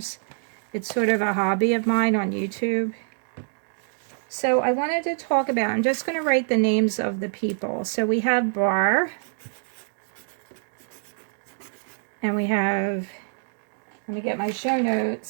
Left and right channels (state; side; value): silent; left; digital silence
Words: It's sort of a hobby of mine on YouTube. So I wanted to talk about, I'm just going to write the names of the people. So we have Barr, and we have, let me get my show